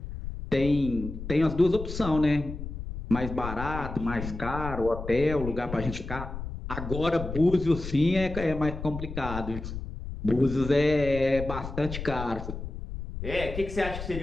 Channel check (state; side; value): noise; left; rumble, 8 dB below the sound